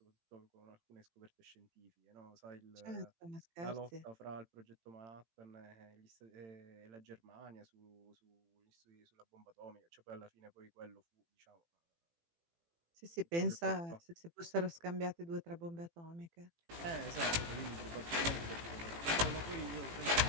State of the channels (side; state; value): left; late; 18 ms